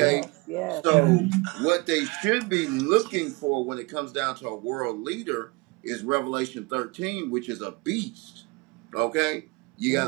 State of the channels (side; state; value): left; quieter; 26.3 dB